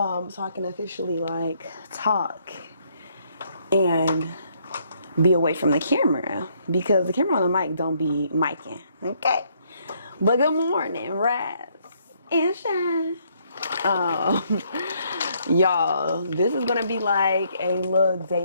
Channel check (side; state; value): both; inverted; correlation -0.69